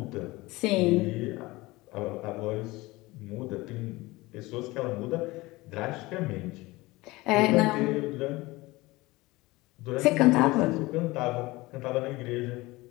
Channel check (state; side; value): quieter; right; 21.0 dB